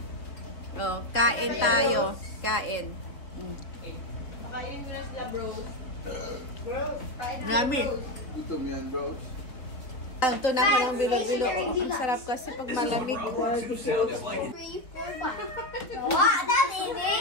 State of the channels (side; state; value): right; late; 3.8 ms